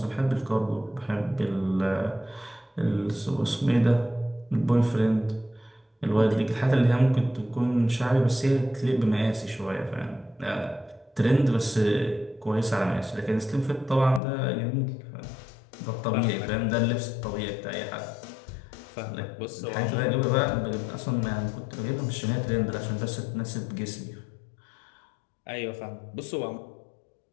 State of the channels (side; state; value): right; drops out; at 14.2 s